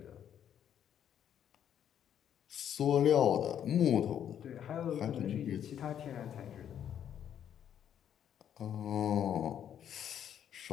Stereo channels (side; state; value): right; quieter; 9.6 dB